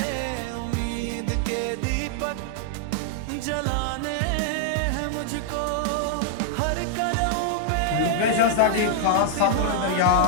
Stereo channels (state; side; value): different; both; correlation -0.01